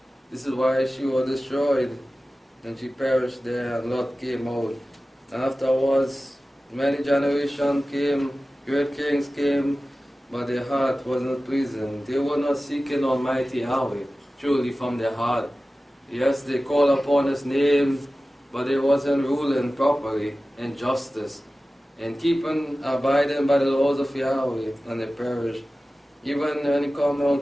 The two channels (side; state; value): both; normal; correlation 0.96